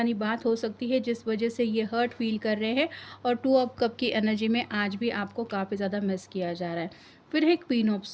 बात हो सकती है जिस वजह से ये हर्ट फील कर रहे हैं। और 2 ऑफ कप की एनर्जी में आज भी आपको काफ़ी ज़्यादा मिस किया जा रहा है। फिर है queen of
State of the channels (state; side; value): identical; both; correlation 1.00